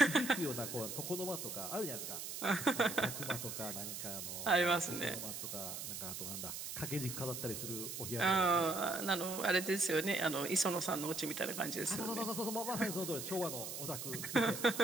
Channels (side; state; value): right; noise; hiss, 6 dB below the sound